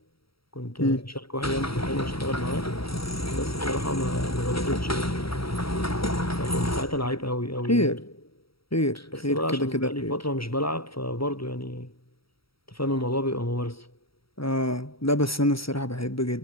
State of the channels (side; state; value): right; late; 0.75 ms